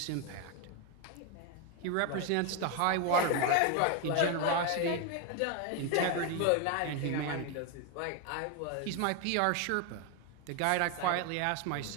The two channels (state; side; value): different; both; correlation 0.01